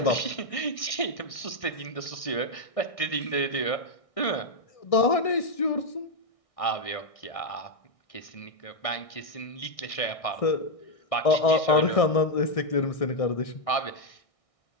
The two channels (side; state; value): right; late; 1.6 ms